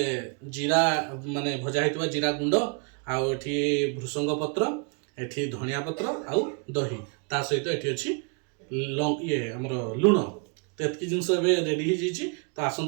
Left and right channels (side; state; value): left; quieter; 38.0 dB